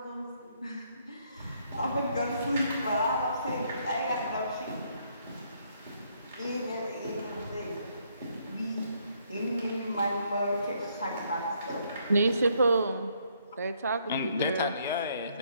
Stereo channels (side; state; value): both; inverted; correlation -0.70